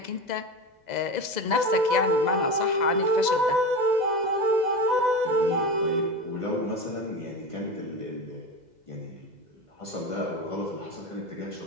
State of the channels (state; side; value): late; left; 2.0 ms